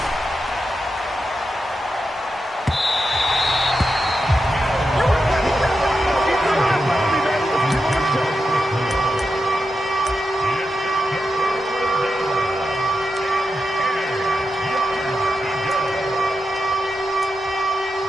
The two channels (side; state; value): both; normal; correlation 0.88